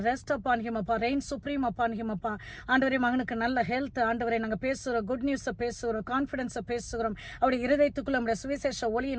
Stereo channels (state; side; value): identical; both; correlation 1.00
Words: rest upon him அப்பா. reign supreme upon him அப்பா. ஆண்டவரே, மகனுக்கு நல்ல ஹெல்த் ஆண்டவரே நாங்க பேசுகிறோம், குட் நியூஸ் பேசுகிறோம், கான்பிடன்ஸ் பேசுகிறோம். அவருடைய இருதயத்துக்குள்ள நம்முடைய சுவிசேஷ